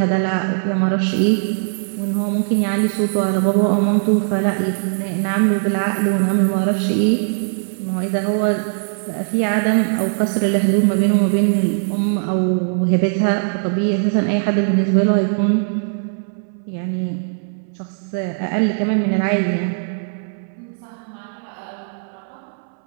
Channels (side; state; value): left; silent; 64 dB below the other